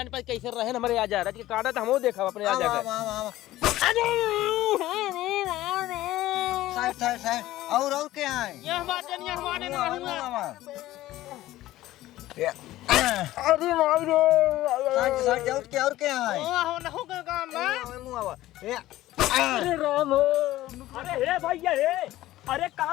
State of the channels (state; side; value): quieter; right; 15.6 dB